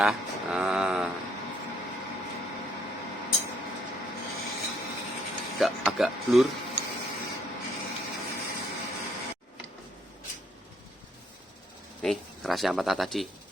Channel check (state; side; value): normal; both; correlation 0.68